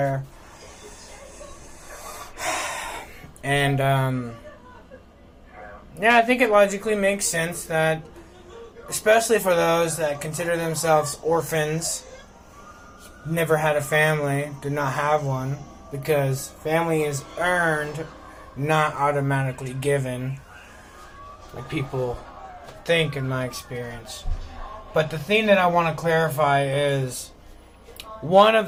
And, yeah, I think it logically makes sense that, especially for those that consider themselves orphans, never had a family, did not have one, because family is earned, not automatically given, like people think in my experience. But the thing that I want to clarify is, one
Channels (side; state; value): both; identical; correlation 1.00